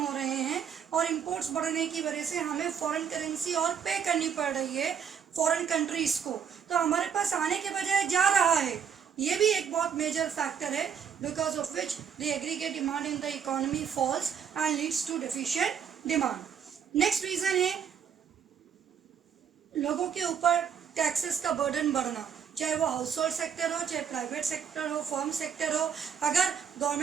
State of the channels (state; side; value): quieter; left; 7.6 dB